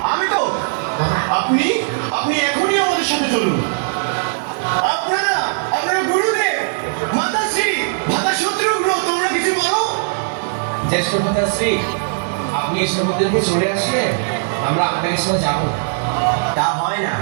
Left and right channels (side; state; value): left; silent; 67 dB below the other